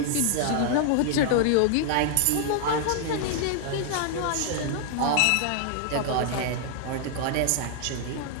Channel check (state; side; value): different; both; correlation 0.00